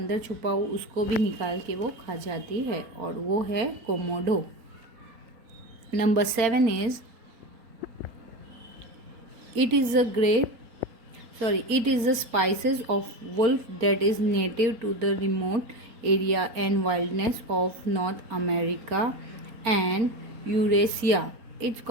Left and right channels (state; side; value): late; left; 4.4 ms